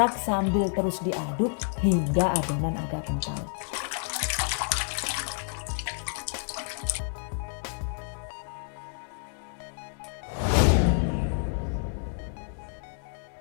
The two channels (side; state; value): right; silent; 59 dB below the other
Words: sambil terus diaduk hingga adonan agak kental.